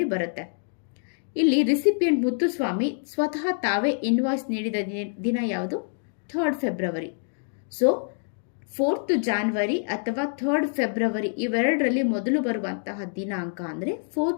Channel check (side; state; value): right; silent; 61 dB below the other